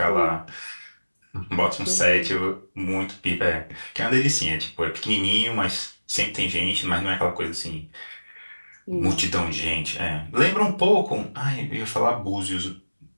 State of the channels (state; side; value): inverted; both; correlation -1.00